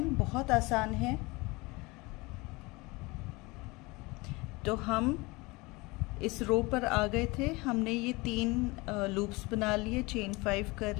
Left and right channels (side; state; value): right; quieter; 24.2 dB